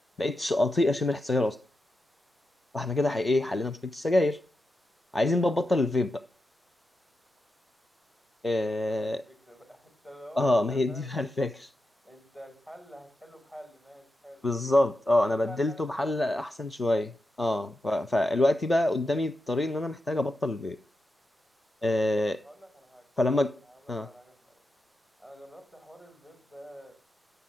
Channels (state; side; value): normal; both; correlation 0.89